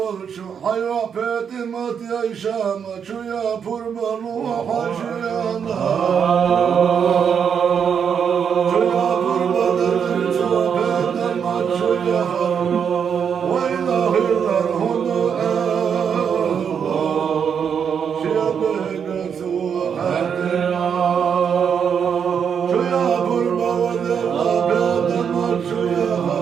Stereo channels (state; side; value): quieter; left; 7.3 dB